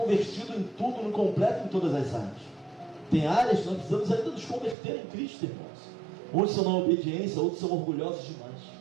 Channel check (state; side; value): drops out; left; at 4.8 s